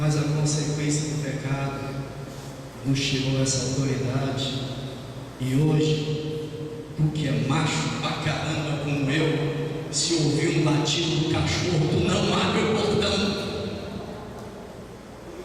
a consequência do pecado nos tirou essa autoridade. E hoje, tu que é macho pra caramba como eu, se ouvir um latido do cachorro, tu não abre o portão.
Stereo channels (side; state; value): both; identical; correlation 1.00